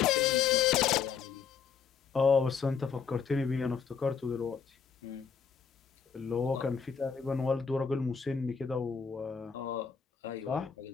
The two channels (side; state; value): right; quieter; 6.5 dB